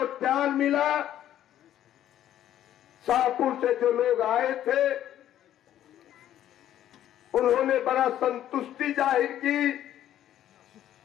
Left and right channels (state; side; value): quieter; right; 11.7 dB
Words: प्यार मिला। शाहपुर से जो लोग आए थे उन्होंने बड़ा संतुष्टि जाहिर की,